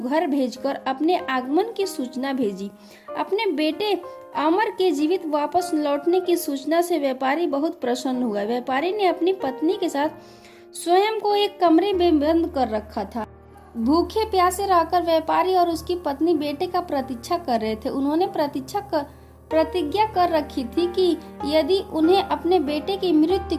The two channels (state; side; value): identical; both; correlation 1.00